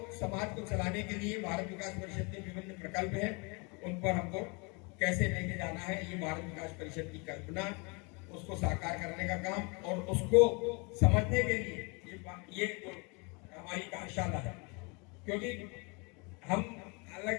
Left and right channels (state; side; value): quieter; right; 30.8 dB